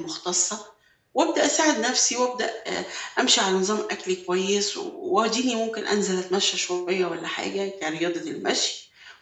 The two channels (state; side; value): identical; both; correlation 1.00